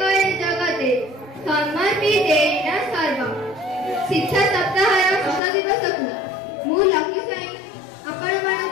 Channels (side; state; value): right; drops out; at 5.4 s